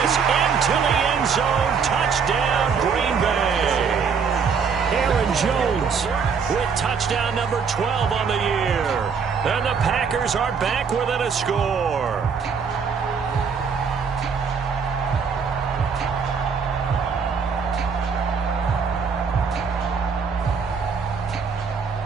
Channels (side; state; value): left; quieter; 5.9 dB